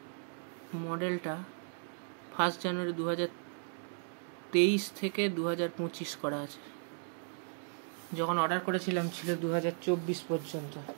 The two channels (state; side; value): silent; left; 54 dB below the other